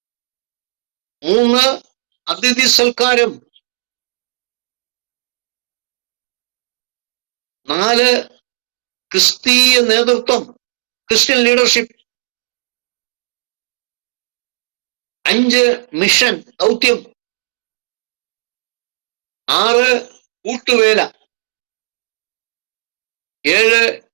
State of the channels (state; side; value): silent; left; digital silence